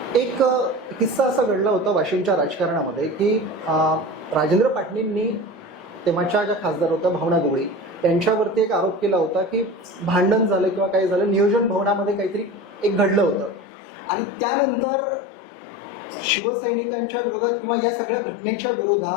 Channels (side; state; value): right; drops out; at 13.7 s